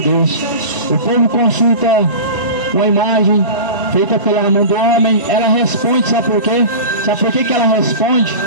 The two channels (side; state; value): both; inverted; correlation -0.32